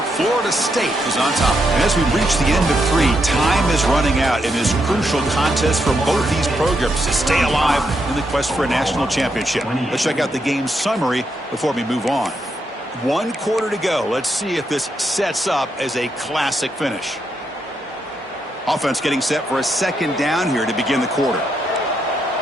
Florida State is on top. And as we reach the end of 3, time is running out in this crucial contest for both these programs to stay alive in the quest for a national championship. Let's check out the game summary before we move on. 1 quarter to go. Let's see if this sets up as a classic finish. Offense getting set for a 2nd down here to begin the quarter.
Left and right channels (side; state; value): both; normal; correlation 0.80